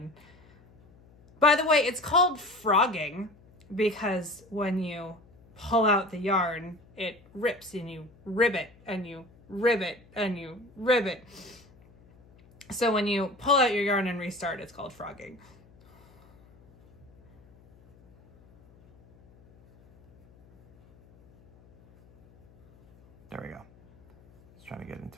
By the way, it's called frogging because when you pull out the yarn, it rips and you ribbit and you ribbit and you ribbit. So when you pull out your yarn and restart, it's called frogging. There we go. I was trying to get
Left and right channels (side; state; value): left; noise; hum, 27 dB below the sound